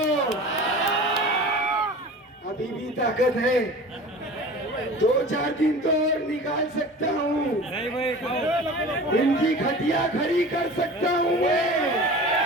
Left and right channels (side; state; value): both; normal; correlation 0.38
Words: अभी भी ताकत है, 2-4 दिन तो और निकाल सकता हूँ, इनकी खटिया खड़ी कर सकता हूँ मैं।